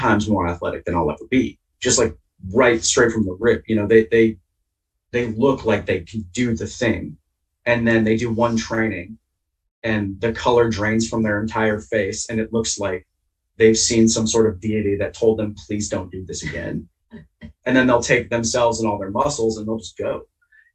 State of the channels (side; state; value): both; identical; correlation 1.00